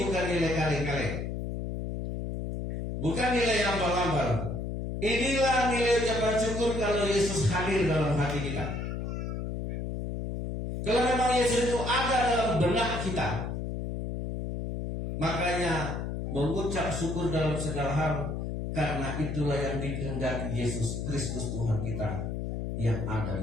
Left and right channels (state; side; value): noise; left; hum, 4 dB below the sound